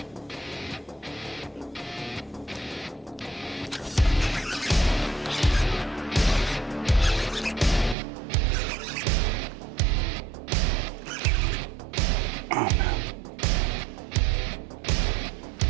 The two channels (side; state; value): left; drops out; at 8.0 s